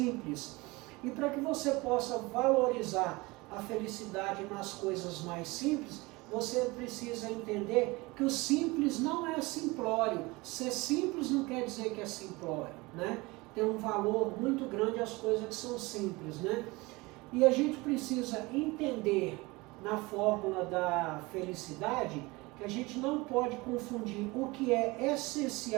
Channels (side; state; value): left; quieter; 23.5 dB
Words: E para que você possa valorizar a felicidade nas coisas mais simples, você precisa entender que o simples não é simplório. Ser simples não quer dizer que é simplório, né? Tem um valor muito grande as coisas que são simples, né? E a gente precisa entender na fórmula da felicidade que a gente não pode confundir o que é